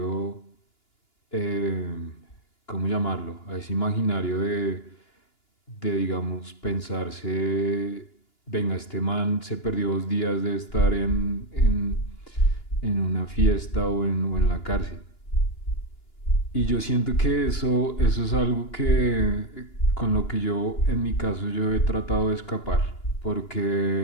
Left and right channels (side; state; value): right; late; 2.9 ms